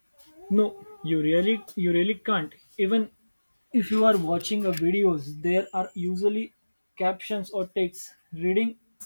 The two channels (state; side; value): inverted; both; correlation -1.00